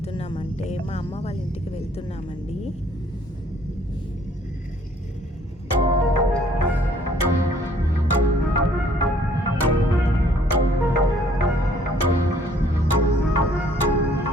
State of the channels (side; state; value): both; normal; correlation 0.61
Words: మా అమ్మ వాళ్ళ ఇంటికి వెళ్తున్నామండి.